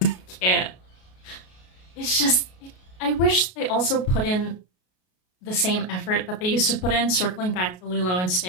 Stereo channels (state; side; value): late; right; 33 ms